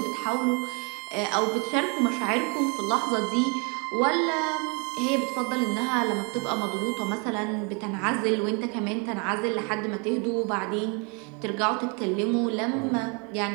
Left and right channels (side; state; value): left; quieter; 33.7 dB